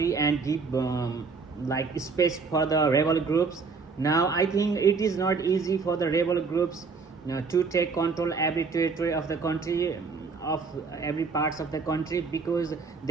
and give like space for the rebel groups. Now I think it is not easy for the rebel groups to take control every territory of the country, of every parts of the country, because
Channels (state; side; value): quieter; left; 4.9 dB